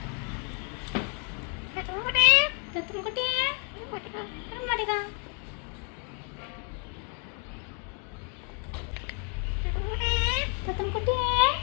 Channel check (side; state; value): right; quieter; 39.3 dB